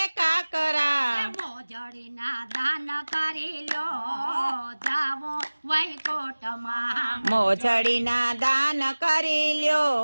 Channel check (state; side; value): inverted; both; correlation -1.00